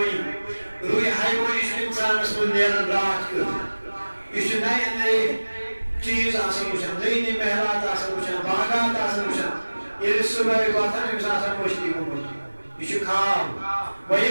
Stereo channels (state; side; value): inverted; both; correlation -1.00